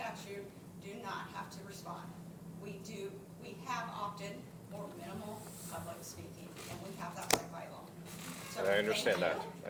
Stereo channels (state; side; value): identical; both; correlation 1.00